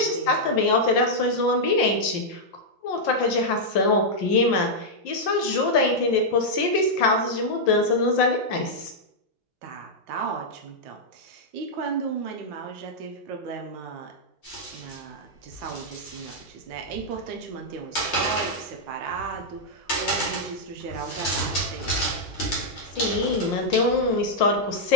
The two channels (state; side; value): normal; both; correlation -0.05